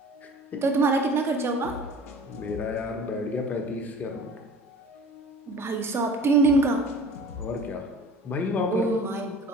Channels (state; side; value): normal; both; correlation 0.43